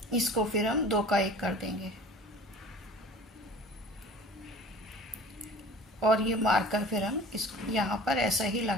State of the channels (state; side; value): normal; both; correlation 0.43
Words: इसको फिर हम 2 का 1 कर देंगे। और ये मार्कर फिर हम इस यहाँ पर ऐसा ही